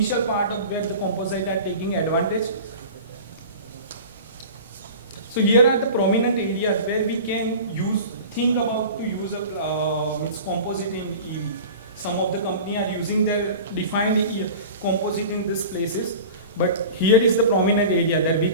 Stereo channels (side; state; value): both; inverted; correlation -0.37